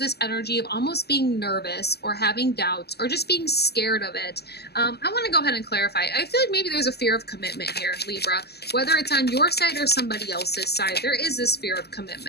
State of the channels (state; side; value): late; right; 0.47 ms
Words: energy of almost being nervous or having doubts or just being scared of it. I want to go ahead and clarify. I feel like maybe there's a fear of commitment here, Libra. Whether it's on your side or somebody else's side, there is this fear of